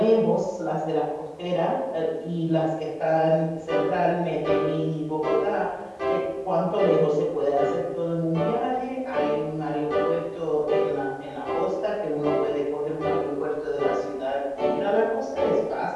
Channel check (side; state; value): both; identical; correlation 1.00